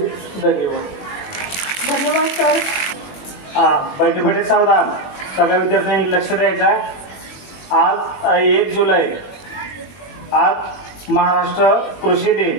धन्यवाद. धन्यवाद सर. बैठे बैठे सावधान, सगळ्या विद्यार्थ्यांनी लक्ष द्यायचं आहे. आज 1 जुलै, आज महाराष्ट्र कृषी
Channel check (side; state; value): right; late; 21 ms